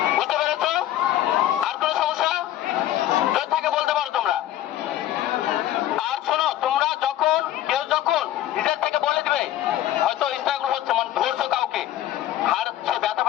বুঝতে পেরেছ? আর কোনো সমস্যা যদি থাকে বলতে পারো তোমরা। আর শোনো, তোমরা যখন যখন নিজের থেকে বলে দিবে, হয়তো ইন্টারভিউ হচ্ছে, মানে ধরছো কাউকে, আর সে ব্যথা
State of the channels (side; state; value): right; quieter; 13.1 dB